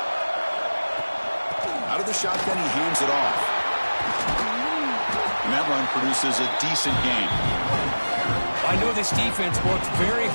Out of the shotgun, he hands it off. And that run produces a decent gain. I know this defense worked very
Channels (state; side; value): inverted; both; correlation -1.00